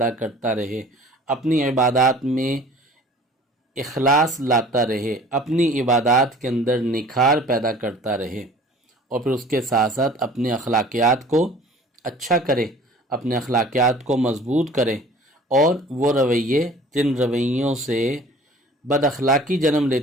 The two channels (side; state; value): both; normal; correlation 0.47